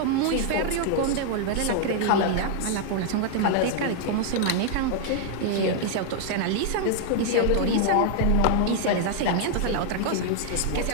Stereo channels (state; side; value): different; both; correlation 0.00